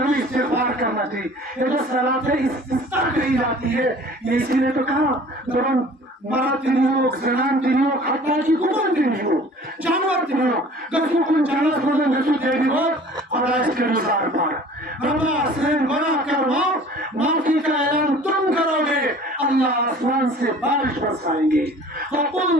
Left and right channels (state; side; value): normal; both; correlation 0.48